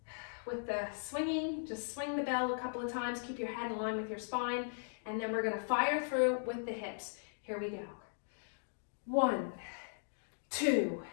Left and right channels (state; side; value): silent; right; digital silence